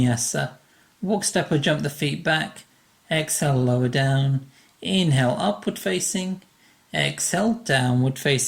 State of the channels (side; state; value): both; identical; correlation 1.00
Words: Walk, step or jump the feet back. Exhale, lower down. Inhale, upward facing. Exhale, downward